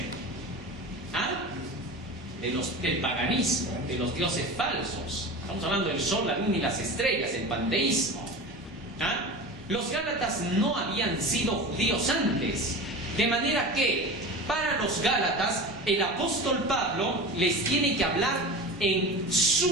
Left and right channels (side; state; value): both; normal; correlation 0.31